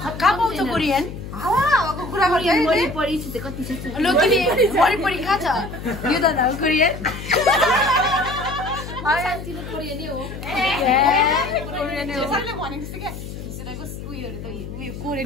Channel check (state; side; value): noise; left; hum, 10 dB below the sound